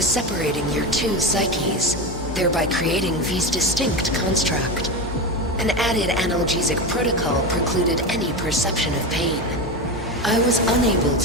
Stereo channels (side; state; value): both; normal; correlation 0.20